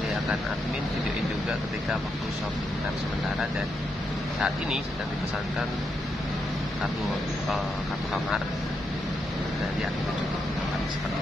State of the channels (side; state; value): both; normal; correlation 0.82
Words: akan admin videoin juga ketika waktu shopping time sementara, dan saat ini sedang dipesankan kartu kamar dan admin juga seperti